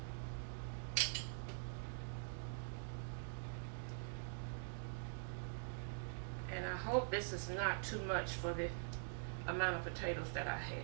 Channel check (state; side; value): silent; left; digital silence